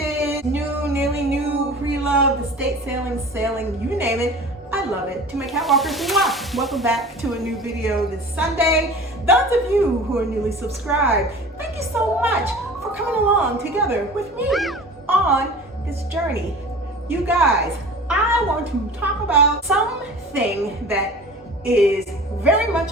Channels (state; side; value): normal; both; correlation 0.40